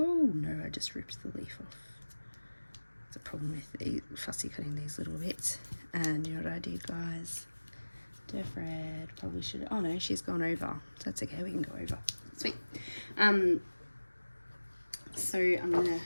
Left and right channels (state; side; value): inverted; both; correlation -1.00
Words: no, I just ripped the leaf off. It's a problem with fussy cutting these little bits. And you know what I did, guys? Fred probably should, oh no, she's gone over, so that's okay, we can go over. Sweet. So I'm gonna,